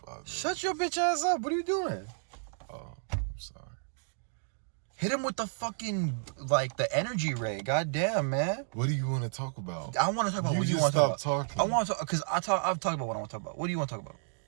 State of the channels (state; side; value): silent; left; digital silence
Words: minutes. Shut your bitch ass up. What are you doing? Oh, I'm sorry. Hit him with the fucking, like, the energy ray. God damn, man. What do you want to talk about? I want to talk about what you want to talk about. Talking. I want to talk, because I've talked about what I want to talk about. What do you want to talk about?